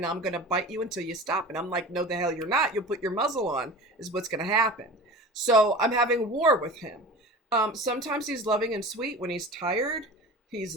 I'm going to bite you until you stop. And I'm like, no, the hell you're not. You'll put your muzzle on is what's going to happen. So I'm having war with him. Sometimes he's loving and sweet. When he's tired, he's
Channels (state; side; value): normal; both; correlation 0.35